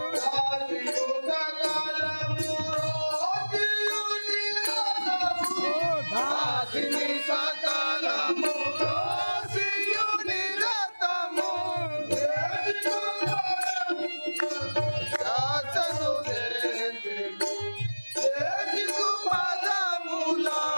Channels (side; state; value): both; inverted; correlation -1.00